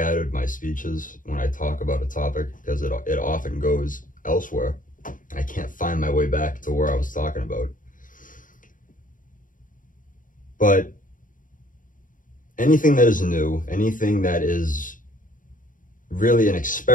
my speech is when I talk about a topic, because it often goes elsewhere. I can't find my way back to where I was talking about. But anything that is new, anything that is really an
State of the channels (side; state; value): right; late; 0.39 ms